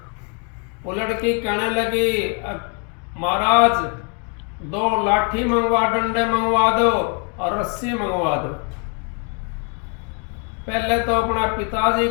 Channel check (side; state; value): right; quieter; 36.5 dB